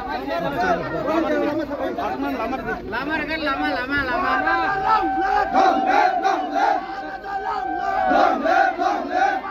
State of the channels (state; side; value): identical; both; correlation 1.00